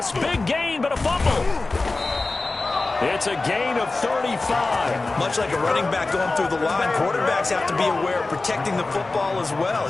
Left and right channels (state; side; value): quieter; right; 3.4 dB